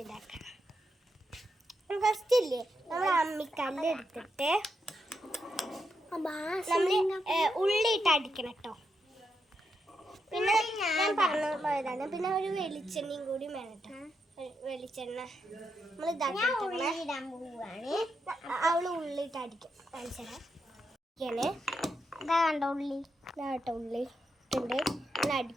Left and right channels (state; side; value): normal; both; correlation 0.83